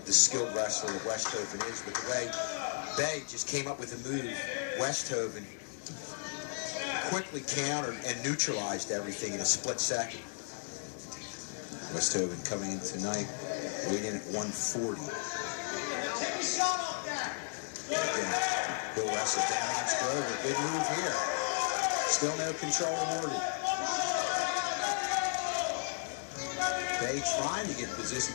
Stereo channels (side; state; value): right; silent; 55 dB below the other